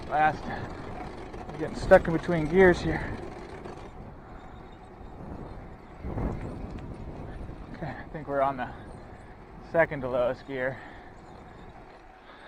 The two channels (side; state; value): both; identical; correlation 1.00